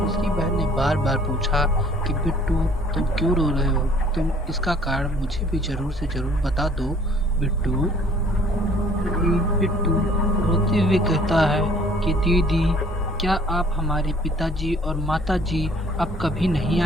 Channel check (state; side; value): normal; both; correlation 0.56